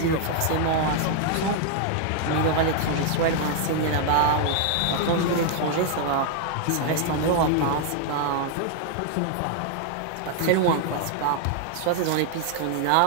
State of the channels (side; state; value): both; different; correlation 0.00